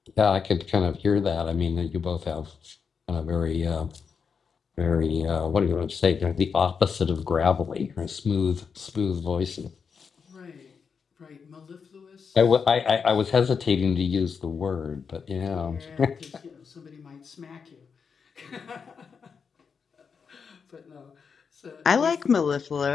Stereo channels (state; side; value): quieter; right; 6.0 dB